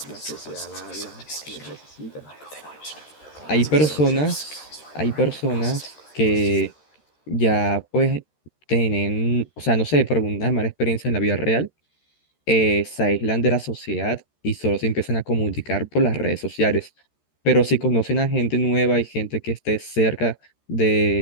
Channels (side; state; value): right; late; 13 ms